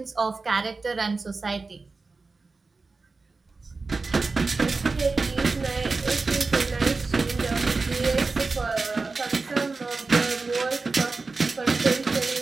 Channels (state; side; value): quieter; left; 3.9 dB